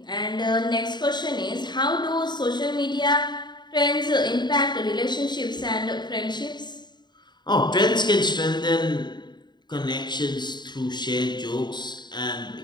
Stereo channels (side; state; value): right; late; 0.21 ms